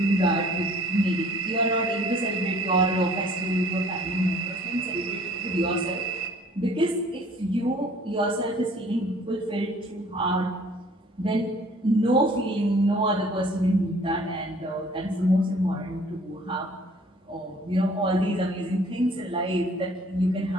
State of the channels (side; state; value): both; normal; correlation 0.54